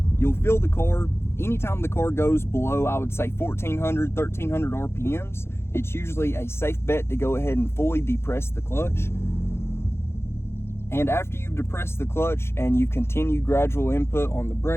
You'll feel the car. Anytime the car goes below, I would say 1400, 1300 RPMs, it's usually a safe bet to go ahead and fully depress the clutch. And after you've depressed the clutch and you've continued gradual input on the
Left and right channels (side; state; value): right; late; 0.12 ms